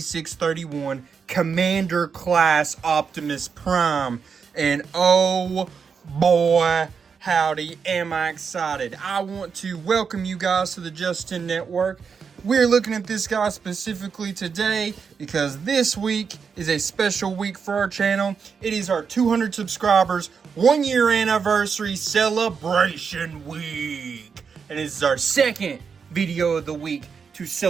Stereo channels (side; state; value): left; quieter; 6.0 dB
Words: Commander Class Optimus Prime. And oh boy, howdy, am I excited. I want to welcome you guys to the Justin Network. We're looking at this guy specifically today because this week is a special week for our channel. It is our 200 subscribers 1 year anniversary celebration week. And this is our second video of the week to